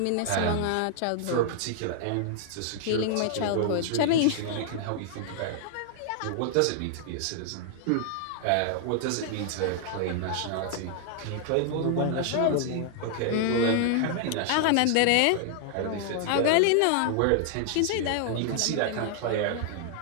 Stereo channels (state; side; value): different; both; correlation 0.00